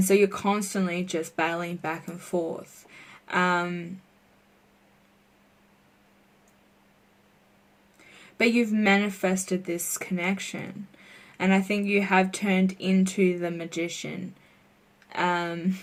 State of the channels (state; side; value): identical; both; correlation 1.00